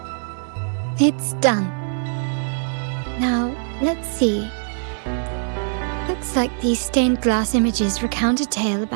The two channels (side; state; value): left; silent; 64 dB below the other